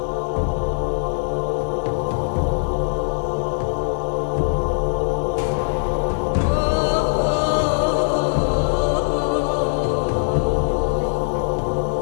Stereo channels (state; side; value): silent; right; digital silence